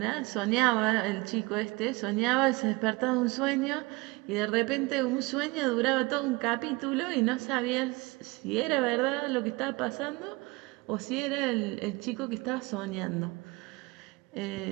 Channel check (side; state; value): left; quieter; 24.4 dB